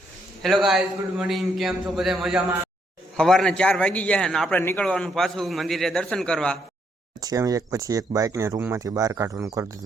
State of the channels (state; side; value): normal; both; correlation 0.74